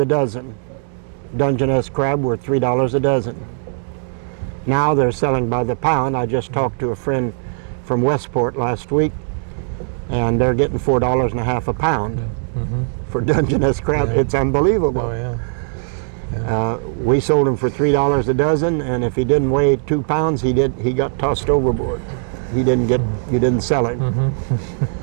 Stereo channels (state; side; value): silent; left; 66 dB below the other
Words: dozen. Dungeness crab were $3 a dozen. Now they're selling by the pound. I just talked to a friend from Westport last week, and they're getting $4.50 a pound for Dungeness crab. Yeah. It's unbelievable. Oh yeah. We sold him for $3 a dozen, and if he didn't weigh 2 pounds, he got tossed overboard. You didn't sell him.